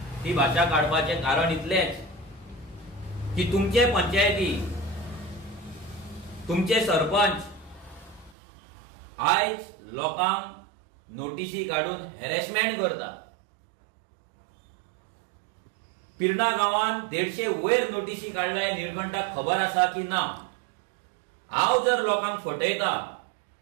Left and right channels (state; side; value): drops out; left; at 8.3 s